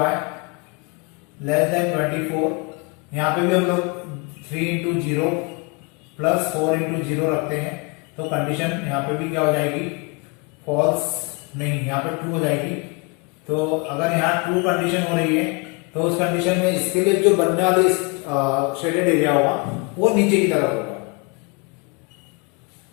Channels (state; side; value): quieter; right; 30.0 dB